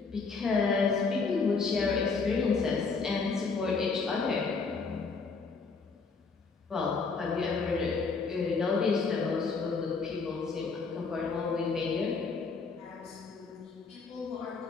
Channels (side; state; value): right; quieter; 4.6 dB